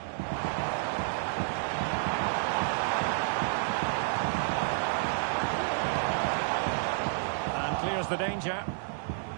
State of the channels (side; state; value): left; silent; digital silence